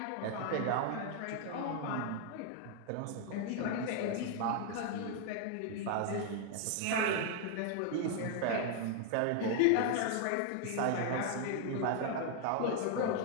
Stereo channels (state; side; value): different; both; correlation 0.00